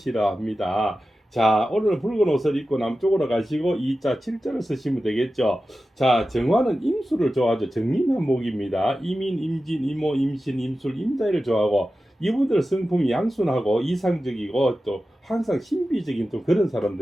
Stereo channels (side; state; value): both; normal; correlation 0.93